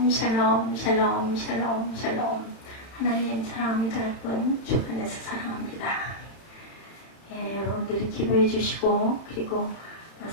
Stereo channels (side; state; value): right; late; 31 ms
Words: 샬롬 샬롬 샬롬 샬롬. 하나님 사랑합니다. 여러분 주 안에서 사랑합니다. 여러분들이 기도해 주시고 그리고